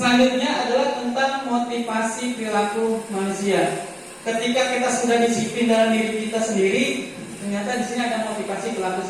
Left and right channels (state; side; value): identical; both; correlation 1.00